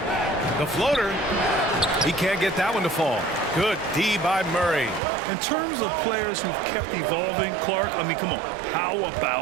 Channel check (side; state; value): left; drops out; at 5.0 s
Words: The floater. He can't get that one to fall. Good D by Murray. In terms of players who've kept evolving, Clark, I mean, come on. How